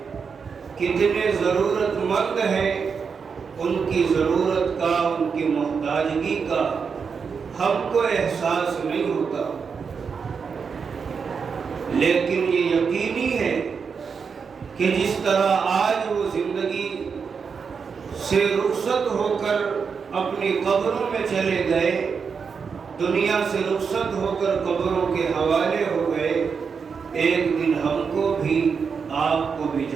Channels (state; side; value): quieter; left; 5.8 dB